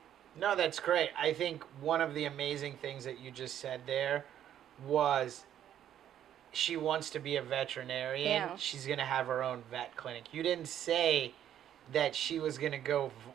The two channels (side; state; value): left; quieter; 10.6 dB